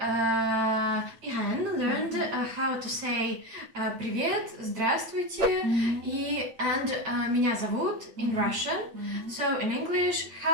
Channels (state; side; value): late; left; 9.0 ms